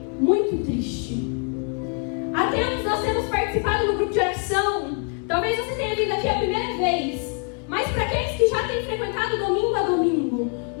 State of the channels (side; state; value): right; quieter; 38.2 dB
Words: muito triste. Há tempos nós temos participado do grupo de oração. Talvez você tenha vindo aqui a primeira vez, mas para aqueles que já têm frequentado domingo a domingo,